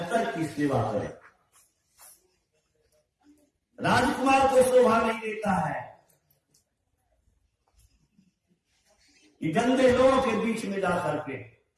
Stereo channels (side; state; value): both; identical; correlation 1.00